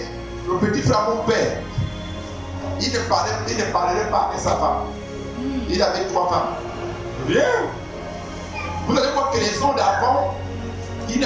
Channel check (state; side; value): identical; both; correlation 1.00